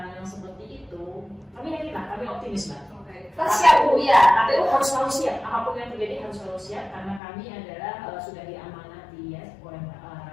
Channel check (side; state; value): right; drops out; at 7.2 s